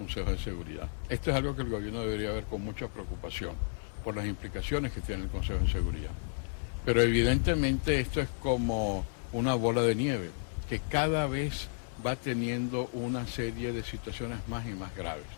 de Seguridad. Esto es algo que el gobierno debería ver con mucha preocupación por las implicaciones que tiene el Consejo de Seguridad. Pero evidentemente esto es como una bola de nieve, que cada vez va teniendo una serie de situaciones más y más graves.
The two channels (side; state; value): right; silent; 56 dB below the other